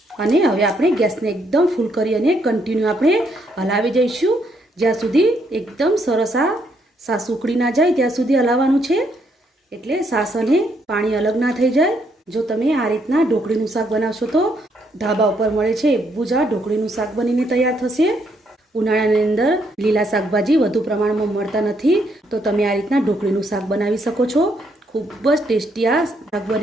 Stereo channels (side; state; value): both; normal; correlation 0.73